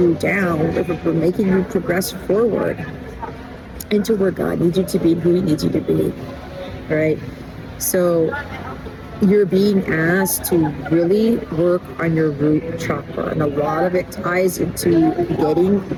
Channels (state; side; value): identical; both; correlation 1.00